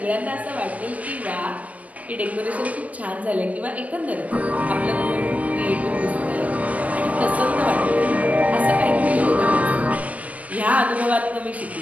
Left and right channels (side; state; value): left; late; 0.068 ms